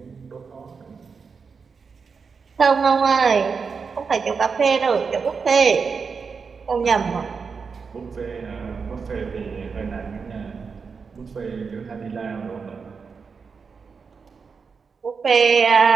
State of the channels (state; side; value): quieter; left; 5.4 dB